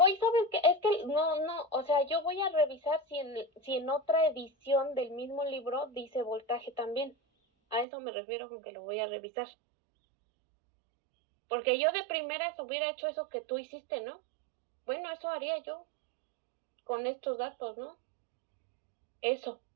qué? Es que no, o sea, yo voy a revisar si en otra edición del mismo libro dice voltaje también. A eso me refiero con que lo voy a revisar. Porque yo de primeras hubiera hecho eso que tú hiciste, ¿no? Bueno, eso haría yo con estos datos, ¿no? Eso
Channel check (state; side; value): drops out; left; at 7.9 s